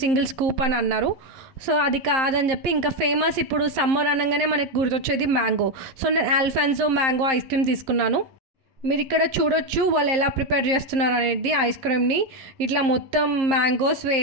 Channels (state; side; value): late; left; 11 ms